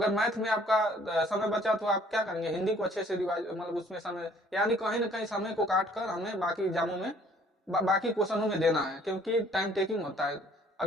मैथ में आपका समय बचा तो आप क्या करेंगे, हिंदी को अच्छे से रिवाइज, मतलब उसमें समय, यानी कहीं ना कहीं समय को काट कर हमें बाकी एग्जामों में बाकी क्वेश्चनों में देना है, क्योंकि टाइम टेकिंग होता है।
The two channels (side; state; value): both; normal; correlation 0.58